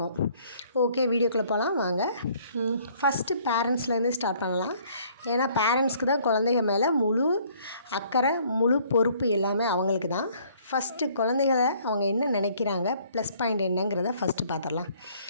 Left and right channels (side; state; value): both; inverted; correlation -0.60